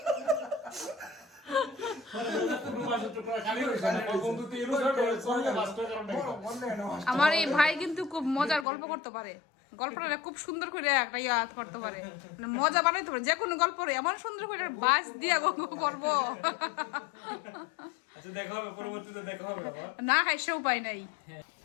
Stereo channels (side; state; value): right; drops out; at 8.7 s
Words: আমার এই ভাই কিন্তু খুব মজার গল্প করতে পারে গল্পটা খুব সুন্দর করে একটা ইয়াদ করতে পারে মানে মজা বানাইতে পারে যে কোনো গল্প এমন সুন্দর করে বাস দিয়া করবো আচ্ছা দেখা হবে পরবর্তীতে দেখা হবে আবার না খাই সে উপায় নাই